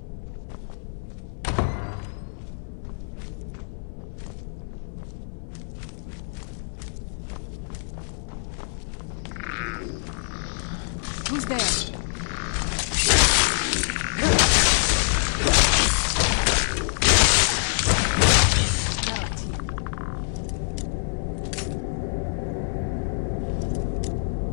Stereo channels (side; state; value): right; silent; 60 dB below the other